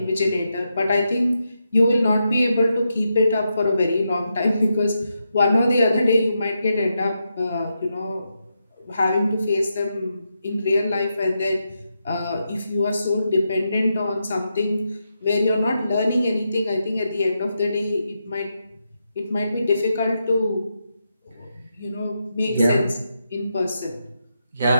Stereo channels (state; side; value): inverted; both; correlation -0.85